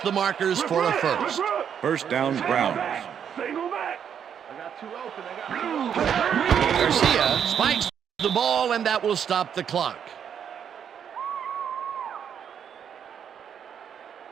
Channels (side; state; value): left; quieter; 8.2 dB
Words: the markers for a first. First down, Browns. Single back. Garcia spikes the ball, and that will stop the clock.